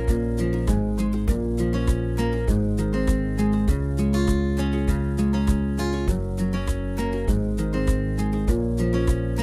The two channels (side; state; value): both; identical; correlation 1.00